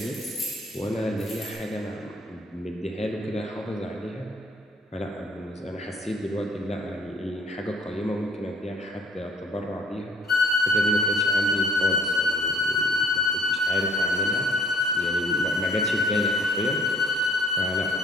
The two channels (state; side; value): normal; both; correlation 0.56